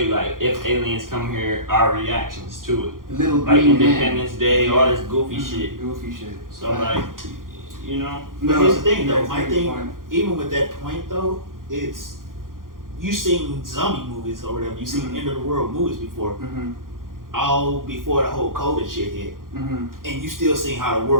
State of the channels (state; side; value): late; left; 0.90 ms